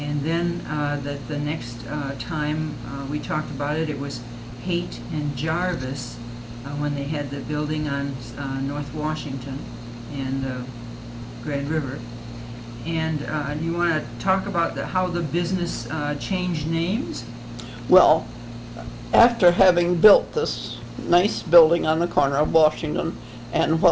then that the next time we talked about it, it was Haite and Jarvis when they had the building on North Washington and Grand River. And you want to talk about how the business changed names? Well, after having built this nice building on the corner of Washington and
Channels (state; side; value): identical; both; correlation 1.00